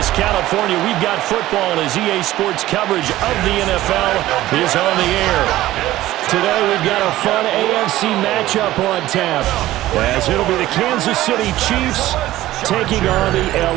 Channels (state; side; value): quieter; left; 15.4 dB